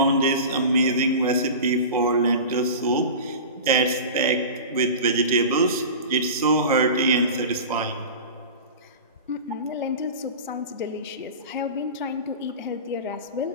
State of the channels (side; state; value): both; inverted; correlation -0.32